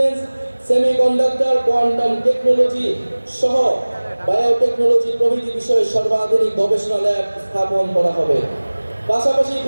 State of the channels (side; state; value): both; inverted; correlation -1.00